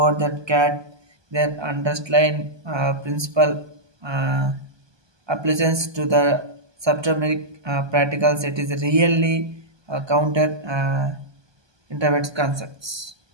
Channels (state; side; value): late; left; 1.2 ms